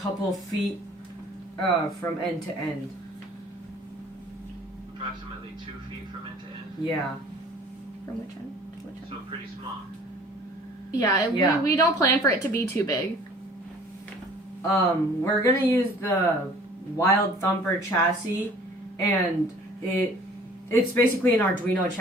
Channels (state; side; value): normal; both; correlation 0.51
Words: feet from end to end. Approximately 2 feet from end to end. Yeah. From which end to which end? So pretty small. Yeah, Yeah. We don't plan for it to be too big. We're gonna use the Wild Thumper chassis, and it's basically an Arduino